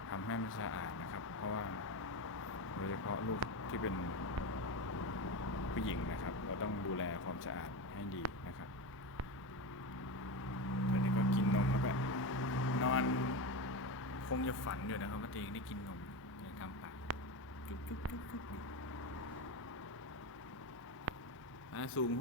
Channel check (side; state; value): both; normal; correlation 0.19